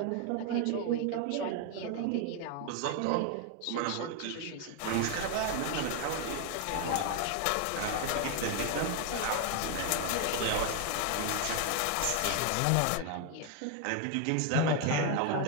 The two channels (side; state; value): both; different; correlation 0.01